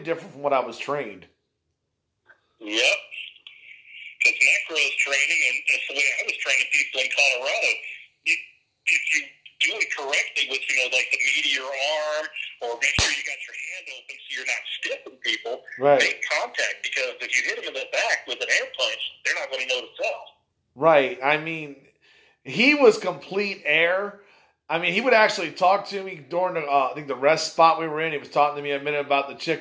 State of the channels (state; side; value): identical; both; correlation 1.00